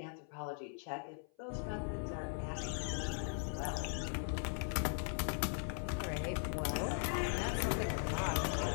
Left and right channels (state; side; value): silent; right; 51 dB below the other